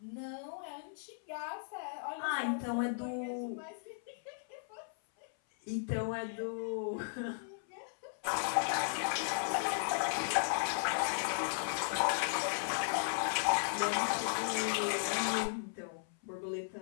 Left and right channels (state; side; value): silent; right; 54 dB below the other